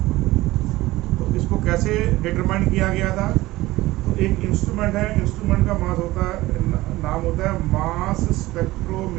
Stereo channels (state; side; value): quieter; left; 18.2 dB